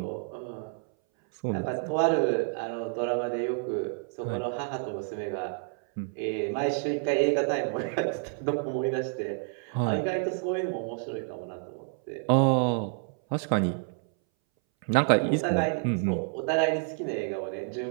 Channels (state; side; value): silent; left; 59 dB below the other